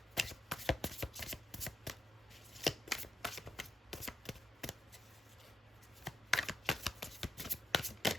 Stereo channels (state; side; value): normal; both; correlation 0.81